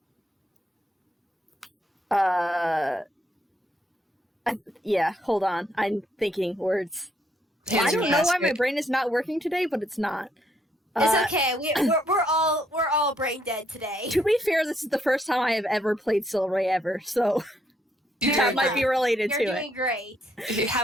Yeah, hold on. I'm thinking words. I don't know why my brain is not working today, but it's not. It's okay. We're all brain dead today. To be fair, this is the first time I have ever played Silray ever, so that might be related to it. You're doing great. You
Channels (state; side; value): normal; both; correlation 0.72